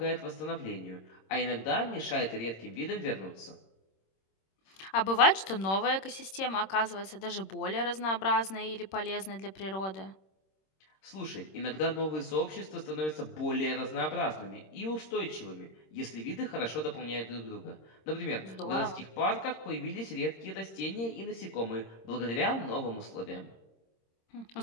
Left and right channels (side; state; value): right; late; 26 ms